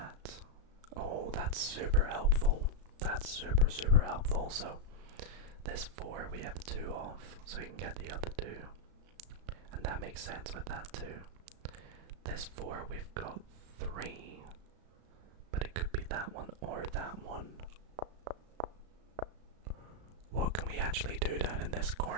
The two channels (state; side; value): late; left; 35 ms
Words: Oh, that's super helpful. That's super, super helpful. So this 4 we have 2 of, so we can get the other 2. And that makes sense with that 2. this 4, we've got 3. But it could be that one or that one. What can we actually do down in this